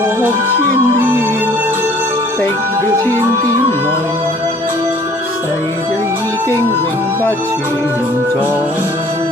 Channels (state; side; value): normal; both; correlation 0.54